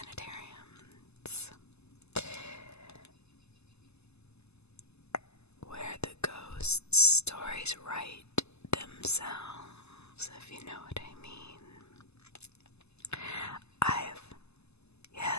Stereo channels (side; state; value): right; late; 0.80 ms